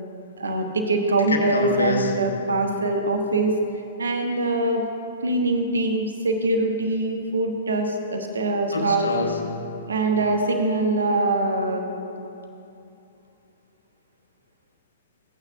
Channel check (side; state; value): both; inverted; correlation -0.38